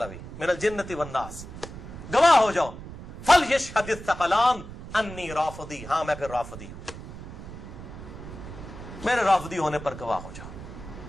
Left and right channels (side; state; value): right; noise; rumble, 12 dB below the sound